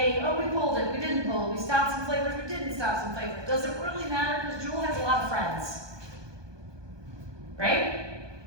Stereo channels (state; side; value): late; left; 1.2 ms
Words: oh, we pulled it, we didn't pull it, we stopped some flavors, we didn't stop some flavors. Does it really matter? Because Juul has a lot of friends, right?